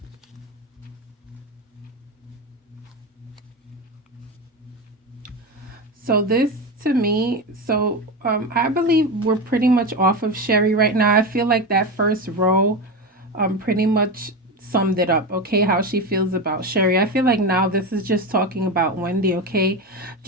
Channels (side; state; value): both; normal; correlation 0.19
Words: So this to me, I believe we're pretty much off of Sherri right now. I feel like that first row pretty much summed it up, okay, how she feels about Sherri. I feel like now this is just talking about Wendy, okay?